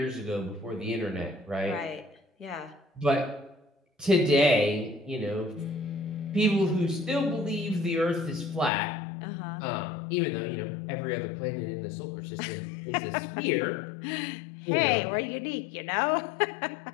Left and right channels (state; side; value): drops out; right; at 8.7 s